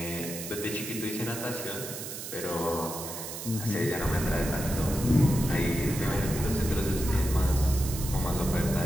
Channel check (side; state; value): right; noise; hiss, 8 dB below the sound